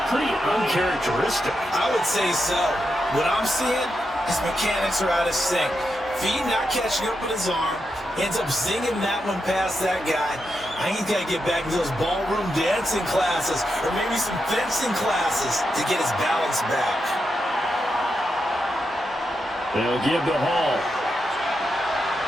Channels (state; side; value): normal; both; correlation 0.85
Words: pretty uncharacteristic. I would say so. What I'm seeing, his mechanics are out of sync. Feet not catching up with his arm. Ends up zinging that one past that guy. I think he's got to get back into those ballroom dancing classes, or maybe some fencing classes, to get his balance back. They'll give the Hall.